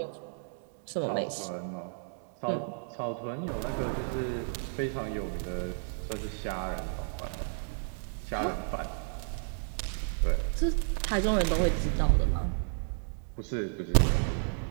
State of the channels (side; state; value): left; silent; digital silence